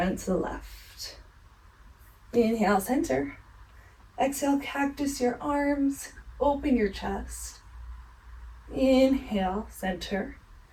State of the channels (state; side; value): identical; both; correlation 1.00